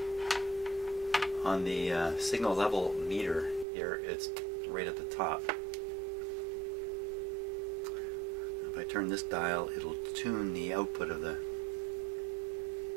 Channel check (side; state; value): left; drops out; at 3.7 s